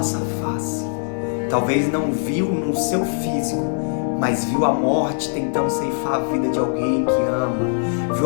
a face. Talvez não viu no seu físico, mas viu a morte tentando ceifar a vida de alguém que ama,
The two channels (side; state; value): right; silent; 65 dB below the other